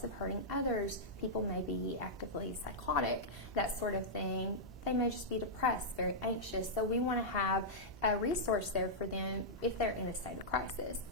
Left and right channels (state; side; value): normal; both; correlation -0.10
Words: of hurting others. People may be actively psychotic, that sort of thing. They may just be depressed, very anxious. So we want to have a resource there for them if they're in a state of crisis.